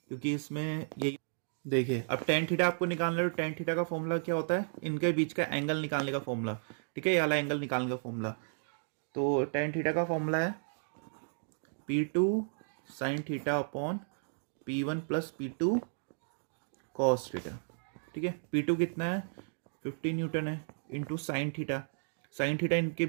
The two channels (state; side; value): silent; left; digital silence